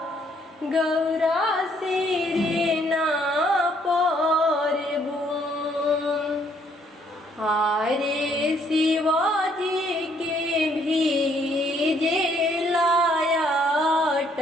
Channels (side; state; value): both; normal; correlation 0.67